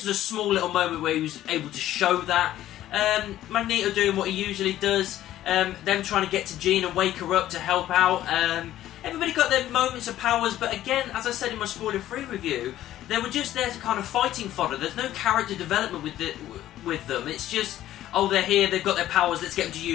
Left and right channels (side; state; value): right; quieter; 13.3 dB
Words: was a small little moment where he was able to show that. Magneto doing what he usually does. Them trying to get to Jean and wake her up to help out. Everybody got their moments of powers, but again, as I said in my spoiler-free review, they were just there to kind of fighting fodder. There's no character development with them. It's just, oh, they're here, they've got their powers, let's get them to